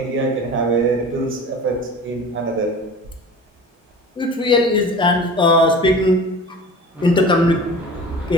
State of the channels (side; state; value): both; normal; correlation 0.38